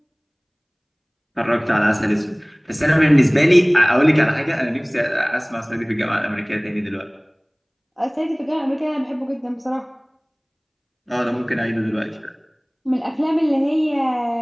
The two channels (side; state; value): both; identical; correlation 1.00